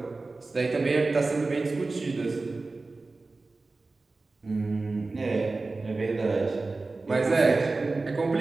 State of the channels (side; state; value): left; quieter; 3.5 dB